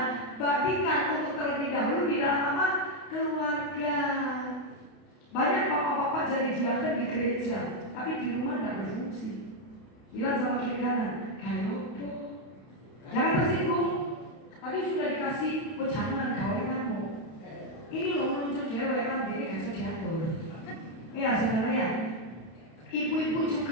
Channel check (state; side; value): late; right; 31 ms